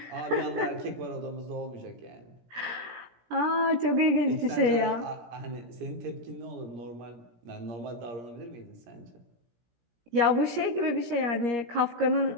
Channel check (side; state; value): left; late; 17 ms